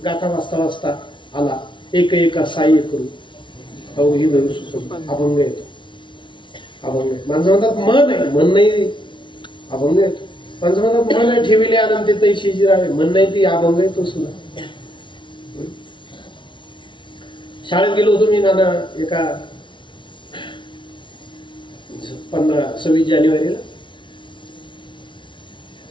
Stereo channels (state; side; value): late; right; 0.24 ms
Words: गाथा वाचता वाचता आला. एक एका साह्य करू अवघी भरू सुचून, अभंग येतो. अभंग माणसं म्हणतात मन आहे, मन नाही, अभंग येतो. माणसं म्हणतात मन आहे ठेविले आनंद ते तैशीची राहावे, मन नाही ती अभंग येतो सुद्धा. शाळेत गेलो होतो मी नाना, एका 26 जानेवारीला